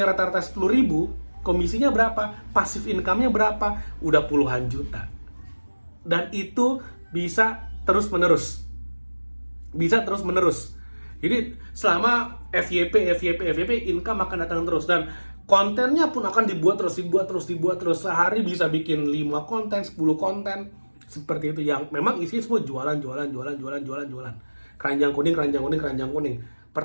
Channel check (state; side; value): inverted; both; correlation -1.00